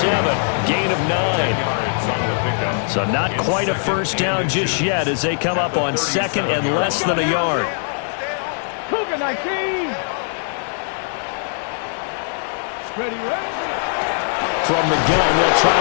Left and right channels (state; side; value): silent; right; digital silence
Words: Gain of 9. So not quite a first down just yet as they come up on second and less than a yard. Cougar 19. Ready. From the gun, they'll try